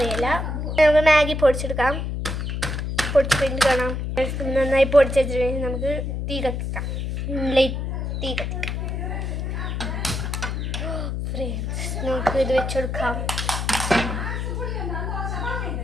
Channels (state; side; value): noise; left; hum, 3 dB below the sound